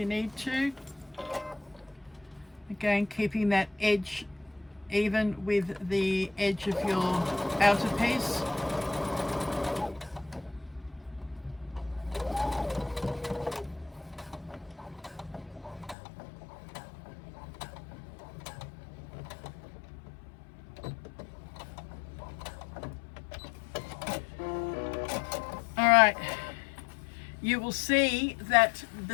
need to. Again, keeping that edge even with the edge of your outer piece. Alright, you will see that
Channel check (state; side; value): drops out; right; at 16.0 s